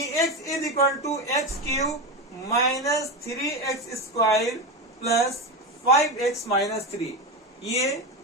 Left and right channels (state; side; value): normal; both; correlation 0.18